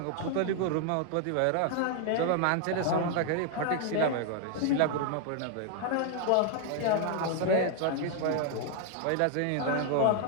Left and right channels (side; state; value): both; different; correlation 0.00